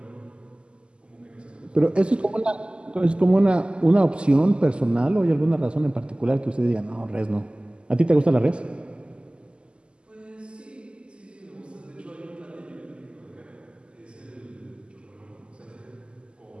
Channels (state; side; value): late; left; 0.051 ms